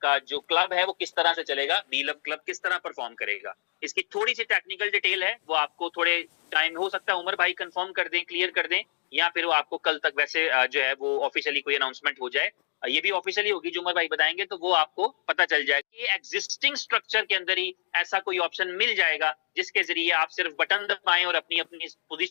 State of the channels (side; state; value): right; silent; 60 dB below the other